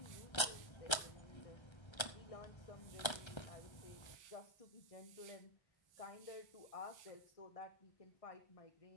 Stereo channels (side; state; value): right; late; 1.3 ms